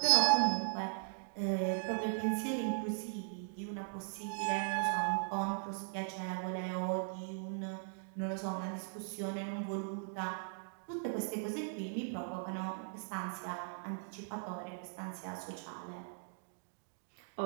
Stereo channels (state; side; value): silent; left; digital silence